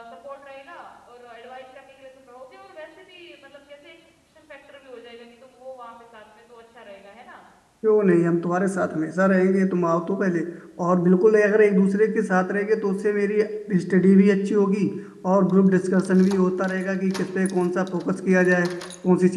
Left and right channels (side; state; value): both; identical; correlation 1.00